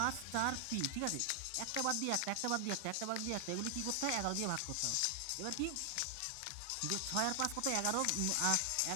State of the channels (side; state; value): both; different; correlation 0.00